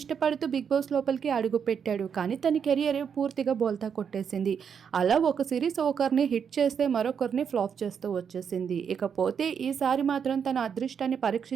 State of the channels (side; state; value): left; quieter; 7.2 dB